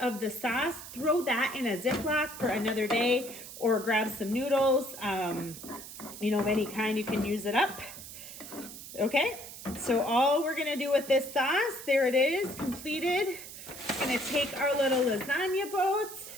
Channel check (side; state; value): right; noise; hiss, 13 dB below the sound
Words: the sauce, throw that in a Ziploc for another day, or grab some noodles, you know, of any kind, you can use it up. Okay, so all we're gonna do with this sauce, there it is, completed. We're gonna take our little lasagna boats